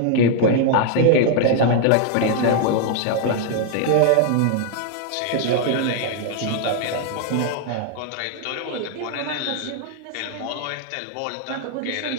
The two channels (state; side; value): different; both; correlation 0.00